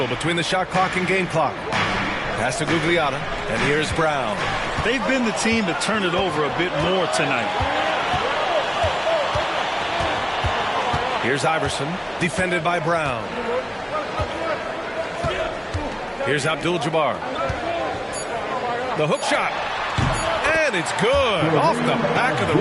between the shot clock and game clock. Pass to Gugliotta, and here's Brown. They've been the team to turn it over a bit more tonight. Here's Iverson, defended by Brown. Here's Abdul-Jabbar. The hook shot. And it's good. Off the back of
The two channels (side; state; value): both; identical; correlation 1.00